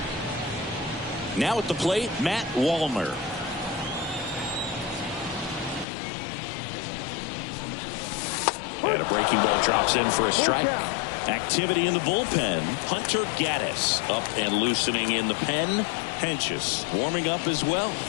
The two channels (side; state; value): right; drops out; at 5.9 s